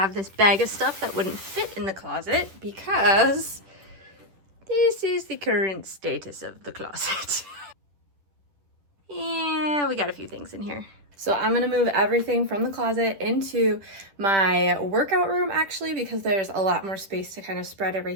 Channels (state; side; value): late; left; 10 ms